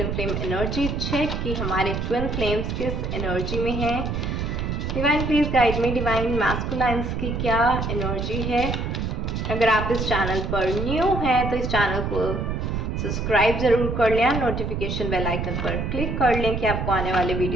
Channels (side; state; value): right; noise; rumble, 2 dB below the sound